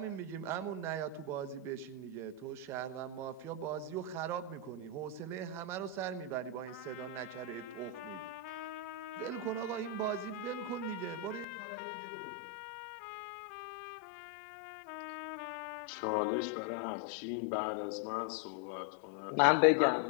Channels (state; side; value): drops out; right; at 11.5 s